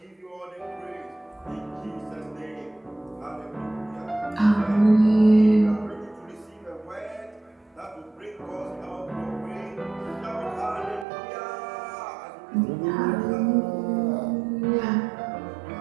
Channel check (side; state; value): left; drops out; at 11.1 s